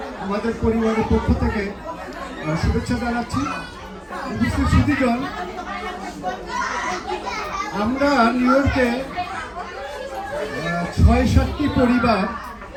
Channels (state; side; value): identical; both; correlation 1.00